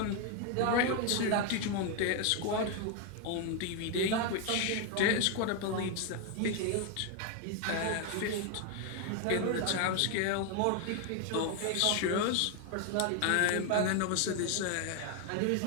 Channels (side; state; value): both; different; correlation 0.01